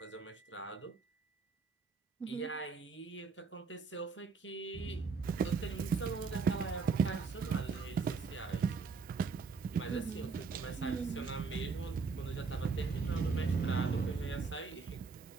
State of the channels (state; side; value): quieter; left; 4.9 dB